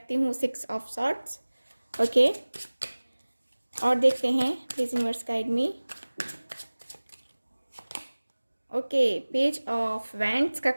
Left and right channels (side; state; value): both; inverted; correlation -1.00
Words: हूँ 6 ऑफ सॉर्ट्स। ओके, और देखते हैं, please universe guide me. Okay, page of wands का